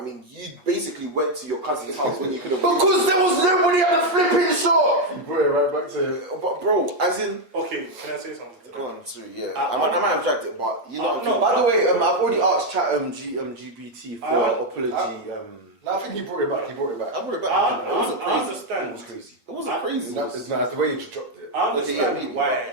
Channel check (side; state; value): left; late; 8.4 ms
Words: mean, you basically went to your cousin's house when you could have. Because there was nobody at the flipping shop. You brought it right back to. But bro, as in. Okay, can I say something? Go on, sorry, yeah. I might have dragged it, but you know. No. By the way, I've already asked chat GBT for apology. No, I think he brought it back. I brought it back. I It wasn't crazy. understand. It was crazy. It wasn't crazy. That's the way you dropped it. I Okay, yeah, understand why.